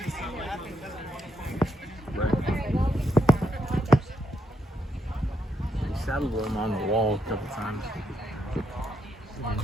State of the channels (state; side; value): normal; both; correlation 0.78